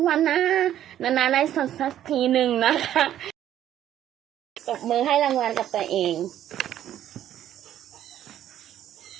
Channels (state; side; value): quieter; left; 11.5 dB